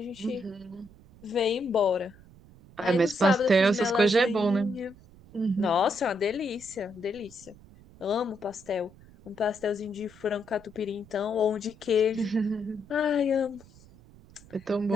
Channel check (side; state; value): right; noise; rumble, 24 dB below the sound